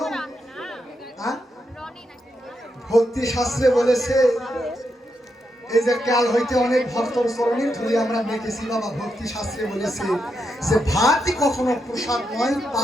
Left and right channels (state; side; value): normal; both; correlation 0.83